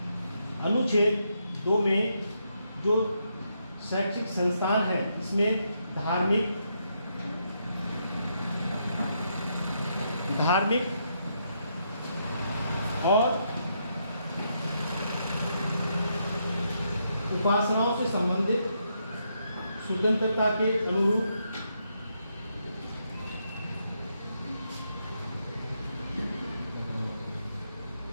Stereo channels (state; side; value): inverted; both; correlation -0.79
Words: 2 में जो शैक्षिक संस्थान है इसमें धार्मिक और उपासनाओं से संबंधित स्वतंत्रता के अनुरूप